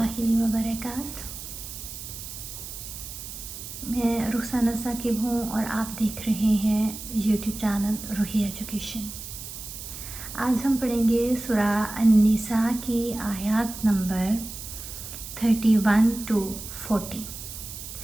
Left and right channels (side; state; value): right; noise; hiss, 10 dB below the sound